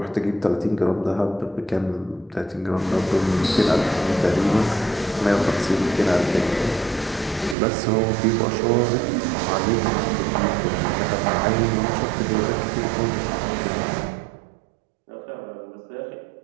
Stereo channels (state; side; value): drops out; left; at 7.6 s